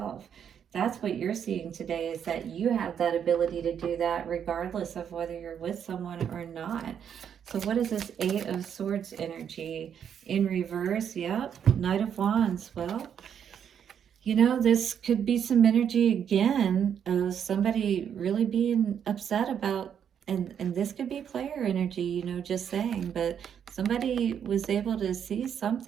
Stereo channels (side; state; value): left; quieter; 8.4 dB